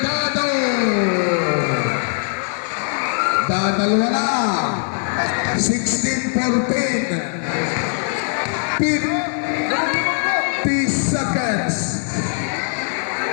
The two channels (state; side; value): silent; right; 56 dB below the other